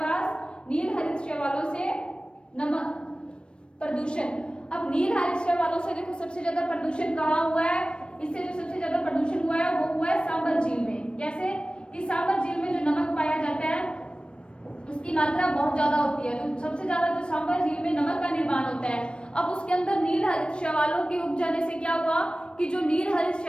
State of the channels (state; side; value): late; right; 0.056 ms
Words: नील हरित शैवालों से नमक प्रदूषण। अब नील हरित शैवालों से देखो सबसे ज्यादा प्रदूषण कहाँ हुआ है, इससे जो सबसे ज्यादा प्रदूषण हुआ है वो हुआ है सांबर झील में। कैसे कि सांबर झील में जो नमक पाया जाता है उसकी मात्रा बहुत ज्यादा होती है, तो सबसे ज्यादा जो सांबर झील में नमक का निर्माण होता है। अब उसके अंदर नील हरित शैवालों के उग जाने से क्या हुआ कि जो नील हरित